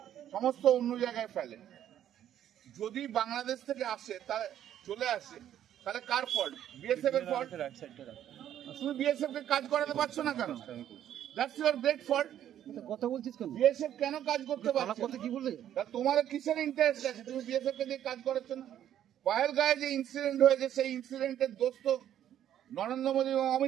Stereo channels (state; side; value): quieter; left; 10.9 dB